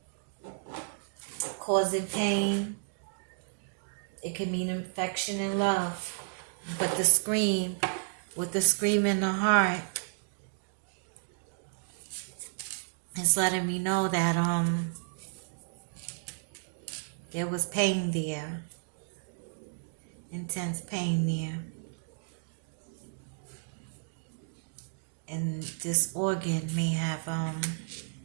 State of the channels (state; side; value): silent; left; digital silence